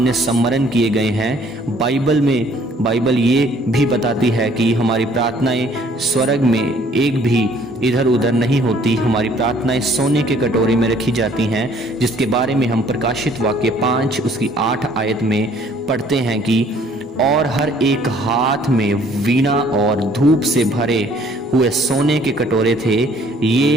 सम्मरण किए गए हैं। बाइबल ये भी बताती है कि हमारी प्रार्थनाएं स्वर्ग में एक भी इधर उधर नहीं होती। हमारी प्रार्थनाएं सोने के कटोरे में रखी जाती हैं, जिसके बारे में हम प्रकाशित वाक्य 5 उसकी 8 आयत में पढ़ते हैं कि और हर एक हाथ में वीणा और धूप से भरे हुए सोने के कटोरे थे।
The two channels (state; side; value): normal; both; correlation 0.59